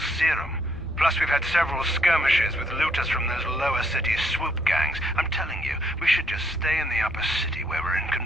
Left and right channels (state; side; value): normal; both; correlation 0.71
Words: serum. Plus, we've had several skirmishes with looters from those lower city swoop gangs. I'm telling you, we should just stay in the upper city where we're in